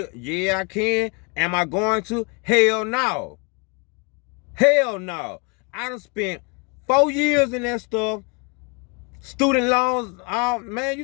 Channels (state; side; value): quieter; right; 32.4 dB